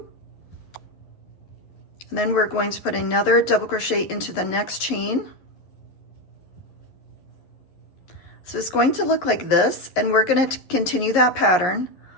And then we're going to put another double crochet into the next chain. So it's going to look like this, and we're going to continue that pattern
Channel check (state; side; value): late; right; 11 ms